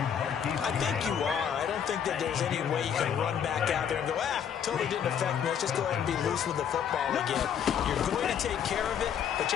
I think you are. I don't think that there's any way you can run back out there and go, totally didn't affect me. Let's just go ahead and be loose with the football again. You're going to take care of it, but you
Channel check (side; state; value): right; quieter; 8.3 dB